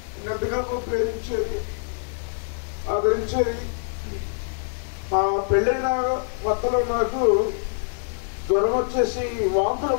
ఎంతగా ప్రేమించేది, ఆదరించేది. మా పెళ్ళైన కొత్తలో నాకు జ్వరం వచ్చేసి వాంతులు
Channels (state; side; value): silent; right; 62 dB below the other